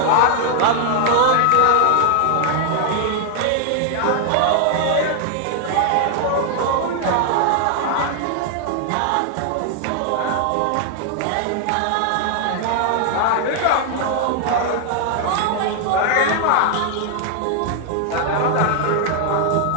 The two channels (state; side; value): different; both; correlation 0.00